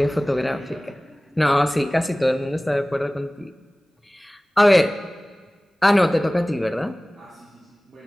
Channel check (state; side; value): normal; both; correlation 0.98